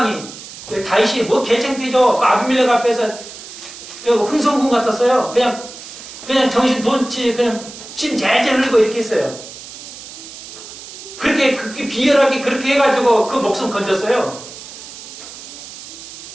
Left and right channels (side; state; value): right; noise; hiss, 14 dB below the sound